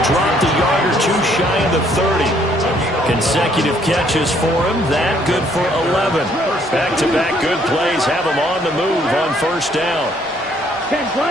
dropped a yard or two shy of the 30. Consecutive catches for him. That good for 11. Back-to-back good plays have him on the move on first down. 10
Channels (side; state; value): both; normal; correlation 0.65